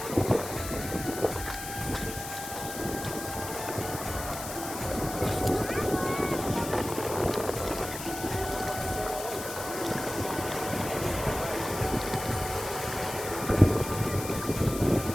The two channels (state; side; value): noise; left; hiss, 9 dB below the sound